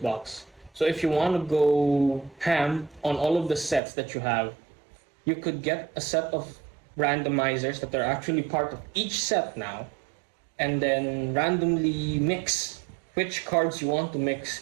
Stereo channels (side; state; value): left; drops out; at 3.8 s